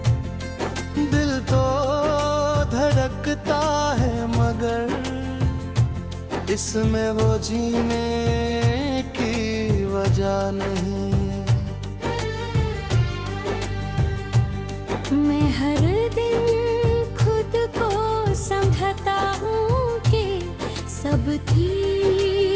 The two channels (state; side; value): identical; both; correlation 1.00